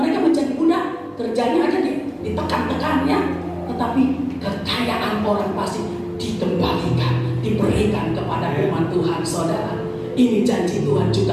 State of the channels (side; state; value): both; identical; correlation 1.00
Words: menjadi budak, kerjanya aja ditekan-tekan ya. Tetapi kekayaan orang fasik dikembalikan, diberikan kepada umat Tuhan, saudara. Ini janji Tuhan